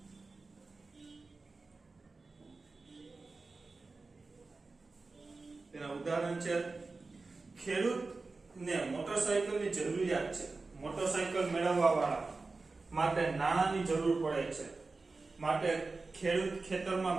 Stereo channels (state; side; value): quieter; left; 3.8 dB